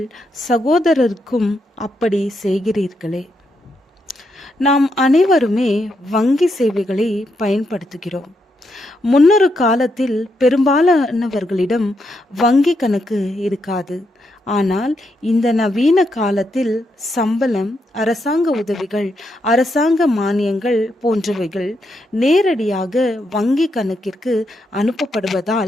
சகோதரருக்கும் அப்படி செய்கிறீர்களே. நாம் அனைவருமே வங்கி சேவைகளை பயன்படுத்துகிறோம். முன்னொரு காலத்தில் பெரும்பாலானவர்களிடம் வங்கி கணக்கு இருக்காது. ஆனால் இந்த நவீன காலத்தில் சம்பளம், அரசாங்க உதவிகள், அரசாங்க மானியங்கள் போன்றவைகள் நேரடியாக வங்கி கணக்கிற்கு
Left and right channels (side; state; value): both; normal; correlation 0.80